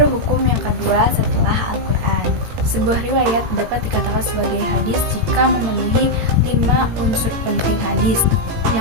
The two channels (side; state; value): left; late; 18 ms